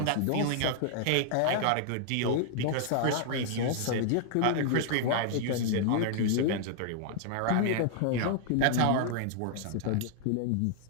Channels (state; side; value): different; both; correlation -0.01